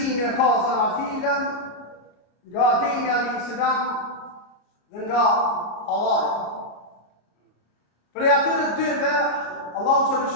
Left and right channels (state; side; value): late; right; 33 ms